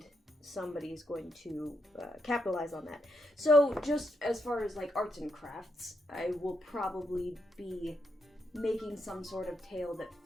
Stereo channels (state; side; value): normal; both; correlation 0.81